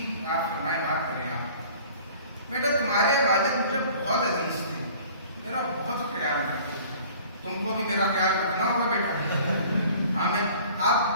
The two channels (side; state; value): both; inverted; correlation -0.49